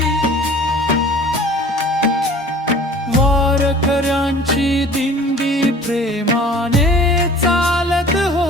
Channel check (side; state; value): both; normal; correlation 0.47